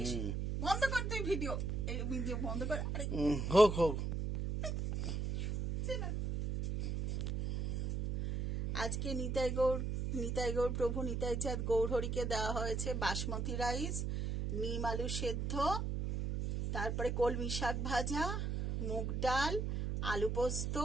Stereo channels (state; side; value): noise; right; hum, 1 dB below the sound